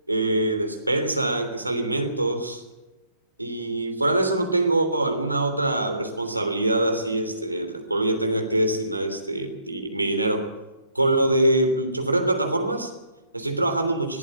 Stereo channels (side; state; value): both; inverted; correlation -0.69